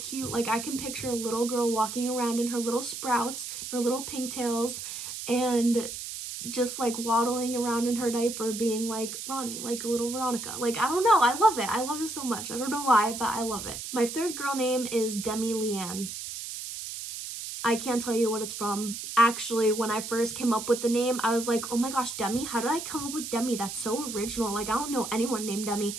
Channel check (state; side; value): noise; right; hiss, 7 dB below the sound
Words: Like I can picture a little girl walking around in her little sprouts, her little pigtails, and just like waddling around in her diaper being like Ronnie, like a little Veronica. Like, I don't know, I love it. I love it so much. I don't know why, but I love it. My third girl name is Demi Leanne. I can't tell you what it's from. Actually, when I first came up with the name, I was like, oh my gosh, Demi, how did I come up with Demi? That's so original. Like, I don't know anyone named Demi.